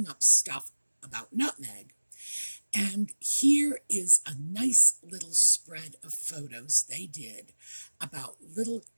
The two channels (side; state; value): both; inverted; correlation -1.00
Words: up stuff about Nutmeg. And here is a nice little spread of photos they did about little